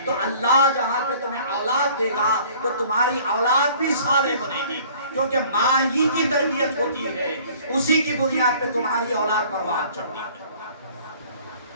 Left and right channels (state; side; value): inverted; both; correlation -0.52